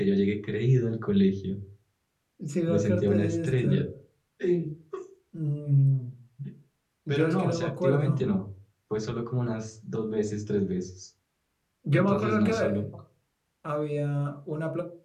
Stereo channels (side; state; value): both; identical; correlation 1.00